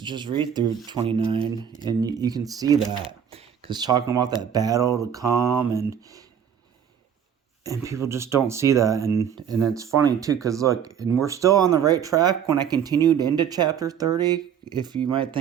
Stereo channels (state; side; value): quieter; left; 8.4 dB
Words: read through 29, and you can see that. Because talking about that battle to come, and people just don't see that. And it's funny, too, because look, and we're still on the right track when I continued into chapter 30. If you might